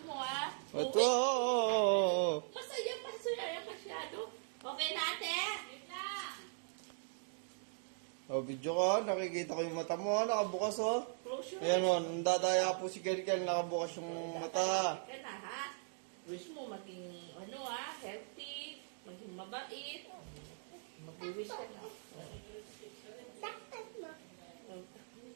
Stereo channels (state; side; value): silent; left; digital silence